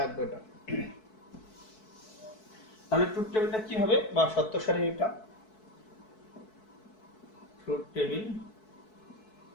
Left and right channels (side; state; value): right; late; 4.6 ms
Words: এটা। তাহলে ট্রুথ টেবিলটা কি হবে, বা সত্য সারি, এটা ট্রুথ টেবিল